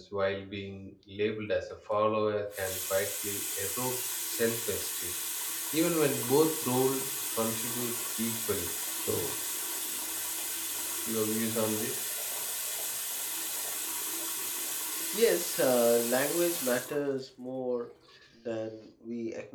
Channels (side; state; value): both; identical; correlation 1.00